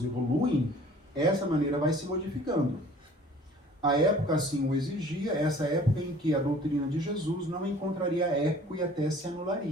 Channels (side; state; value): both; normal; correlation 0.50